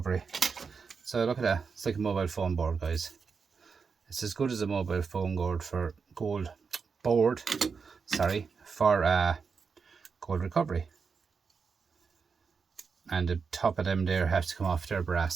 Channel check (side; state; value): left; quieter; 5.4 dB